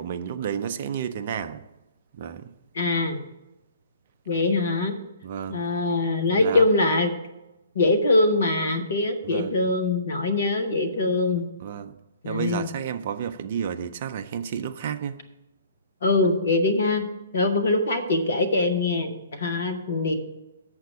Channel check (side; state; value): both; inverted; correlation -0.52